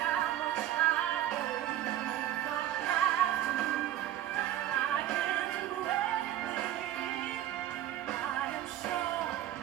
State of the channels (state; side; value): quieter; left; 12.5 dB